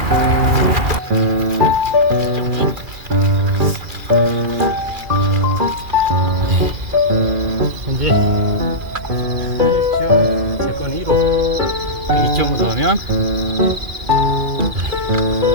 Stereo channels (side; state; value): left; late; 2.4 ms